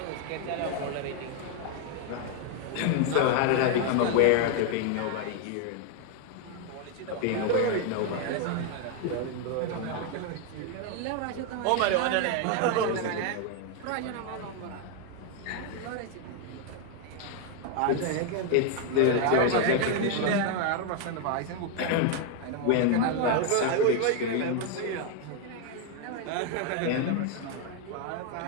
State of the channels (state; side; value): different; both; correlation 0.01